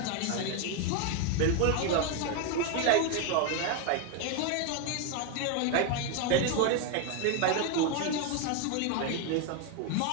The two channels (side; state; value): both; different; correlation 0.01